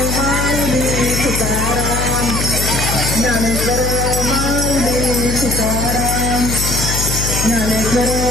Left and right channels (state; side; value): noise; left; hum, 2 dB below the sound